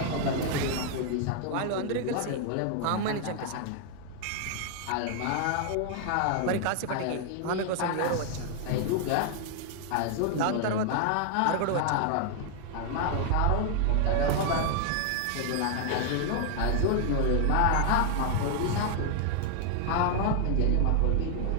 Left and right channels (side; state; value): both; different; correlation 0.00